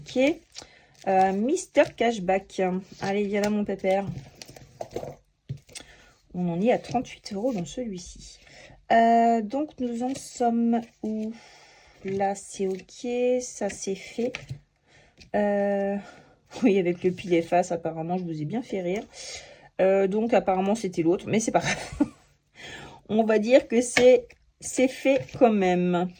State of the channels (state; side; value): identical; both; correlation 1.00